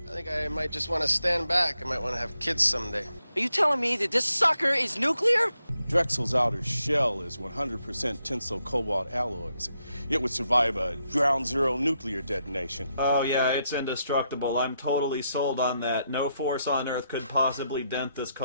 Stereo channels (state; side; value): inverted; both; correlation -0.81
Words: I think I might just want to stand back. I might want to have kids someday. Are you telling me that this sucker is nuclear? Drexel's outer shell is 100% tensile cobalt alloys. It would survive a ground zero nuclear detonation. Oh yeah, it's indestructible. I'm totally sold on that. No force on Earth could possibly dent this